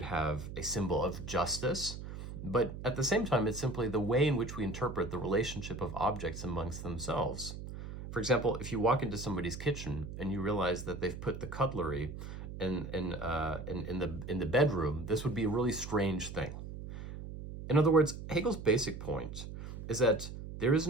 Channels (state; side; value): noise; right; hum, 9 dB below the sound